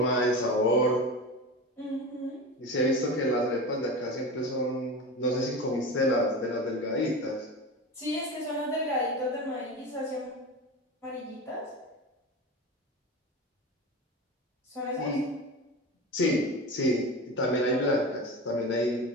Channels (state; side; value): normal; both; correlation 0.27